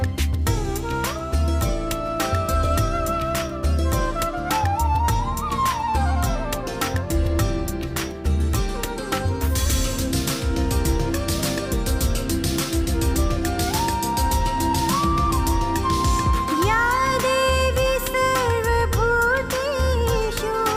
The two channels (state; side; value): identical; both; correlation 1.00